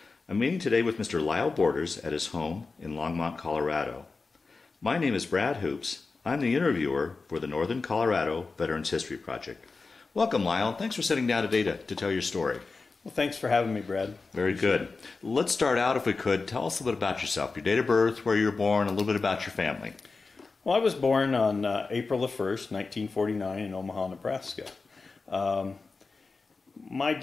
I'm meeting today with Mr. Lyle Borders at his home in Longmont, Colorado. My name is Brad Hoops. I'm the interviewer for the Northern Colorado Veterans History Project. Welcome, Lyle. Thanks for sitting down today to tell your story. Well, thanks for having me, Brad. Very good. Let's start out, if we could. Tell us a little bit about yourself, your date of birth, where you were born, a little bit about your family. Well, I was born on April the 1st, 1949 in Omaha, Nebraska. My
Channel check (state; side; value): quieter; right; 4.1 dB